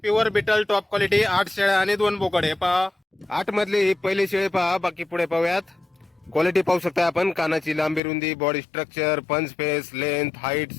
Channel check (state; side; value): drops out; right; at 8.0 s